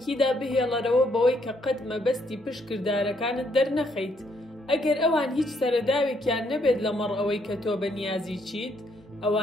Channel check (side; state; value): both; normal; correlation 0.71